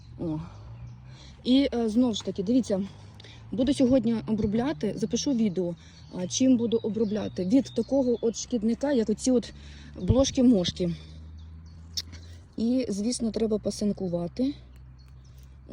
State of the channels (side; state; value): both; identical; correlation 1.00